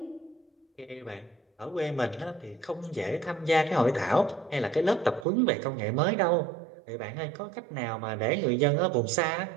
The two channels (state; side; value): drops out; left; at 5.2 s